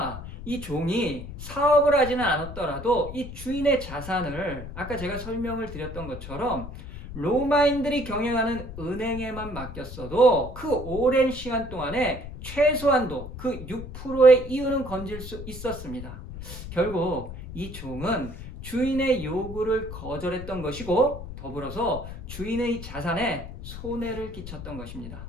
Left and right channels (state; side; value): noise; left; rumble, 11 dB below the sound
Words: 이 종이 사업을 하지는 않았더라도 이 주인의 자산을 아까 제가 설명을 드렸던 것처럼 로마인들이 경영하는 은행에만 맡겼어도 그 오랜 시간 동안에 최소한도 그 6%의 이윤은 건질 수 있었습니다. 결국 이 종은 주인의 요구를 거절했던 것이고 더불어서 주인의 자산에 손해를 끼쳤던 것입니다.